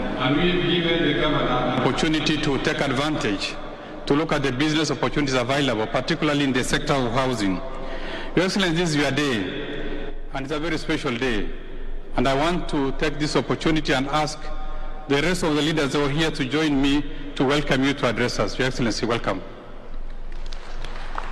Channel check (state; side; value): identical; both; correlation 1.00